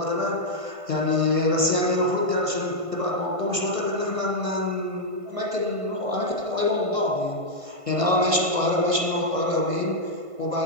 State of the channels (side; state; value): left; late; 1.5 ms